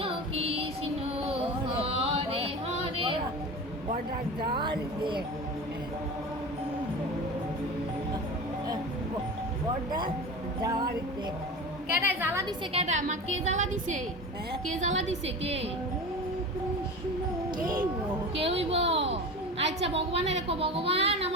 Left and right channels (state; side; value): normal; both; correlation 0.31